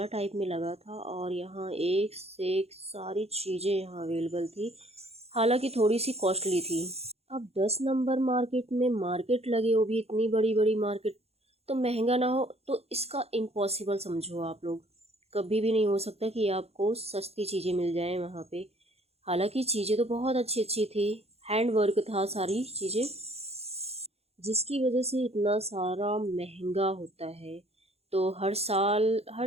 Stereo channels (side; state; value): left; late; 0.30 ms